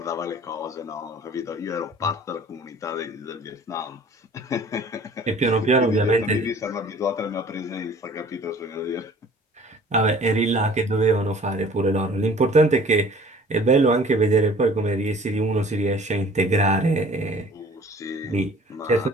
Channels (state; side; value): normal; both; correlation 0.49